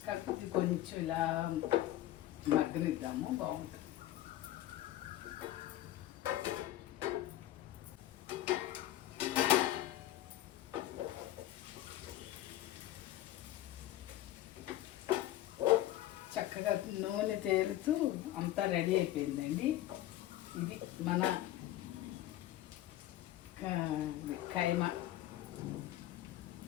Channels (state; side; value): quieter; right; 14.0 dB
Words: కాకపోతే కొంచెం ఇలా మగ్గనిద్దాము, బాగుంటుంది. చక్కగా నూనె తేలుతూ అంతా రెడీ అయిపోయిందండి. ఇది మన